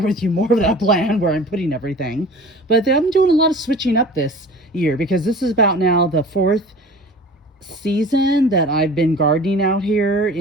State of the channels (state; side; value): normal; both; correlation 0.42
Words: you more of that plan where I'm putting everything. But I'm doing a lot of switching up this year because this is about now the 4th season that I've been gardening out here